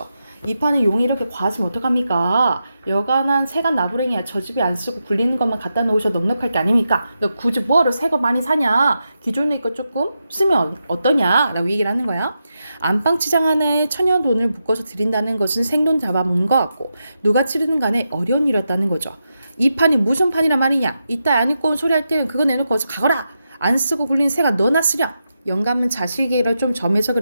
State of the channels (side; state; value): both; inverted; correlation -0.87